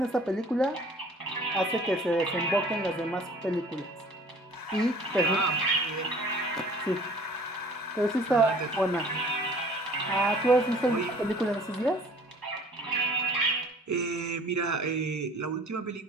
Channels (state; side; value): normal; both; correlation 0.49